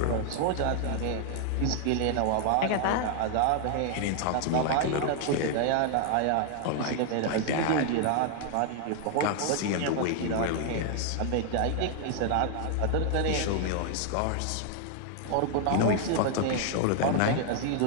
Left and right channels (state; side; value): different; both; correlation 0.00